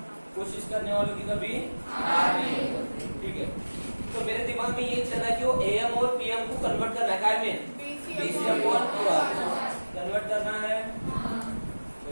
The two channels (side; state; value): both; inverted; correlation -1.00